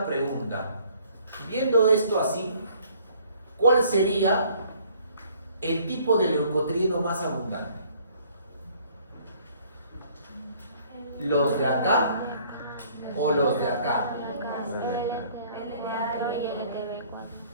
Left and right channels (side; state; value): both; inverted; correlation -0.58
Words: pregunta. Viendo esto así, ¿cuál sería el tipo de leucotrieno más abundante? ¿Los de acá o los de acá? Y LTB4.